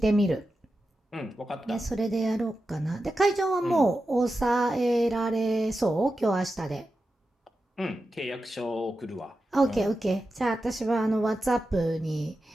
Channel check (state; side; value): normal; both; correlation 0.91